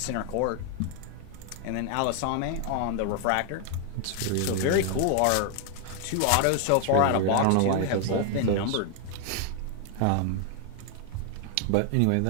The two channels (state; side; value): different; both; correlation 0.00